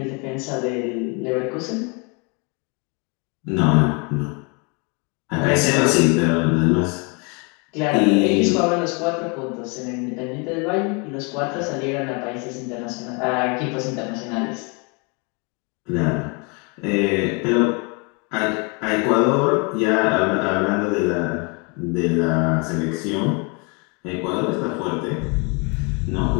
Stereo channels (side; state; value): right; quieter; 32.4 dB